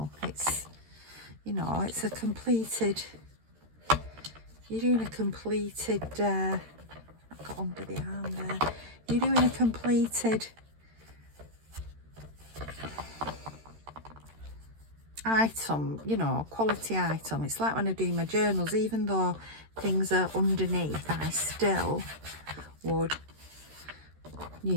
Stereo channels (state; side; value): late; left; 13 ms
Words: It's, you know, it's a completed, you're doing a completed, I got under the arm there. You're doing a completed item, you know, quality item. It's like when I do my journals, even though things are underneath, I still would